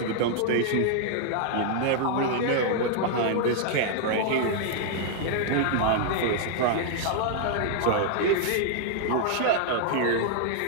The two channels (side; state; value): both; different; correlation -0.01